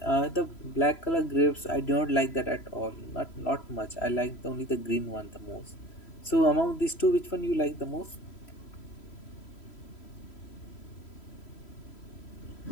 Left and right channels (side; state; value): right; late; 3.0 ms